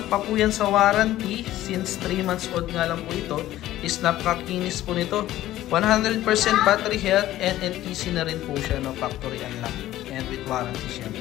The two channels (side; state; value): right; quieter; 14.4 dB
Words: pa po yan sa warranty since 3 months old nga lang po ito. Is napakakinis po nito. 100% battery health and NTC na rin po siya, no? Factory unlock and with warranty